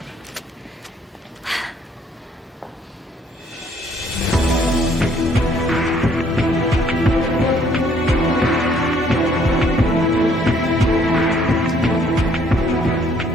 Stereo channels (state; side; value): normal; both; correlation 0.64